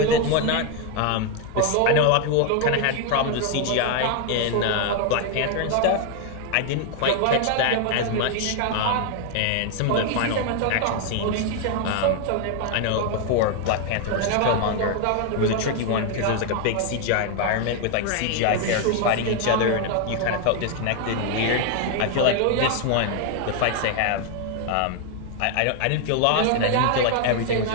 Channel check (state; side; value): different; both; correlation 0.01